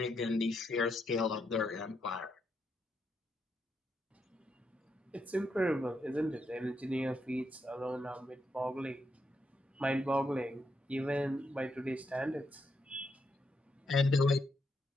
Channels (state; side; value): normal; both; correlation 0.80